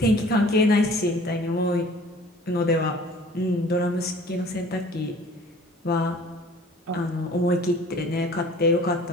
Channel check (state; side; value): normal; both; correlation 0.49